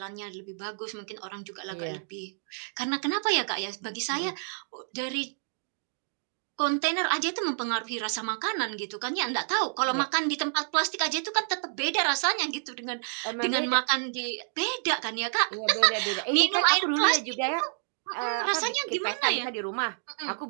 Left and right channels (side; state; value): left; silent; digital silence